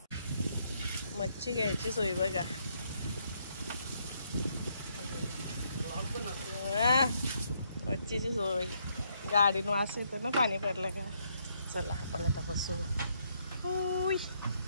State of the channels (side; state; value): both; inverted; correlation -0.74